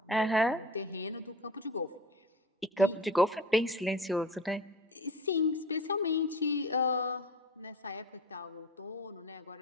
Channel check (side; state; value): both; normal; correlation 0.35